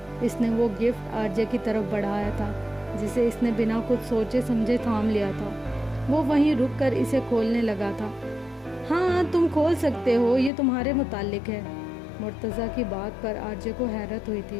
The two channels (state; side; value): drops out; right; at 10.5 s